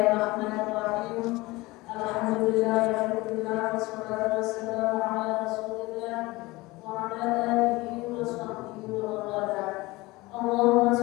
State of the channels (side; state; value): right; quieter; 21.3 dB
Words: Alhamdulillahirabbil wassalatu wassalamu ala Rasulillah wa ala alihi wa sahbihi wa man wala. Allahumma